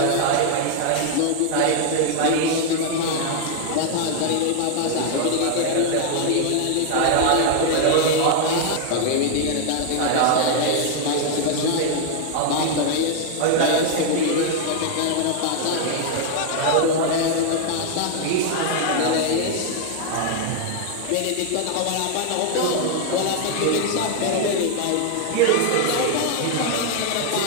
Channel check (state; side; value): different; both; correlation 0.00